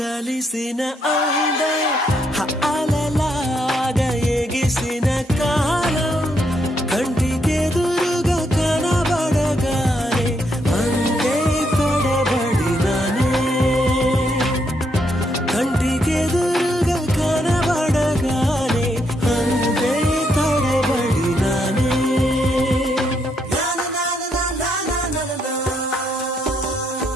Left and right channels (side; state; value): both; normal; correlation 0.76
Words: అలలాగా ఎగిసిన కాలం కంటికెదురుగా కనబడగానే అంతే తడబడినానే కంటికెదురుగా కనబడగానే అంతే తడబడినానే